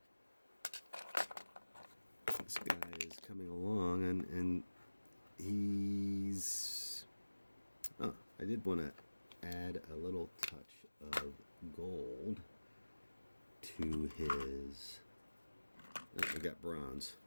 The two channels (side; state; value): both; inverted; correlation -1.00